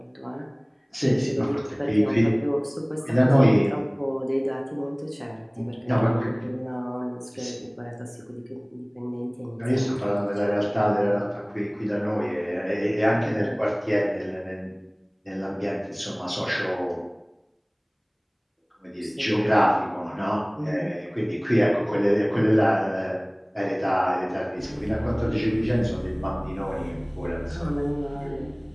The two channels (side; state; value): both; identical; correlation 1.00